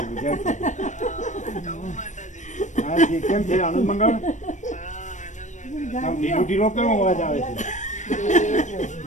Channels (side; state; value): right; late; 0.35 ms